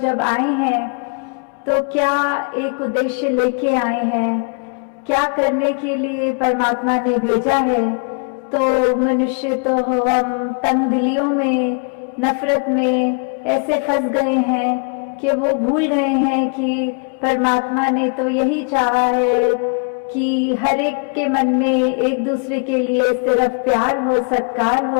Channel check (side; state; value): right; quieter; 37.2 dB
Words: आए हैं तो क्या एक उद्देश्य लेके आए हैं, क्या करने के लिए परमात्मा ने भेजा है। तो मनुष्य तो हम तंग दिलियों में, नफरत में ऐसे फंस गए हैं कि वो भूल गए हैं कि परमात्मा ने तो यही चाहा है कि हर एक के मन में एक दूसरे के लिए सिर्फ प्यार हो, सत्कार